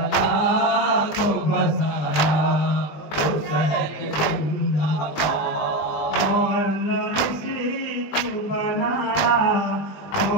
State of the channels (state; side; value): late; right; 20 ms